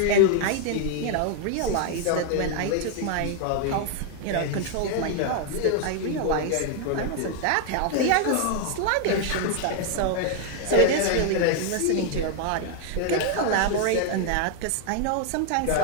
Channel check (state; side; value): different; both; correlation 0.00